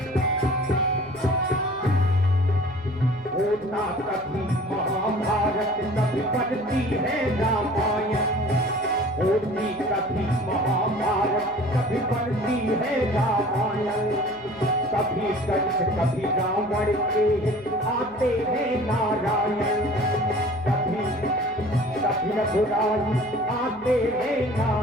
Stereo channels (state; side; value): noise; left; hum, 22 dB below the sound